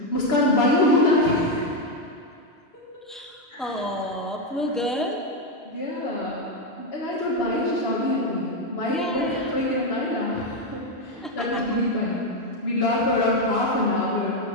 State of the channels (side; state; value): both; normal; correlation 0.05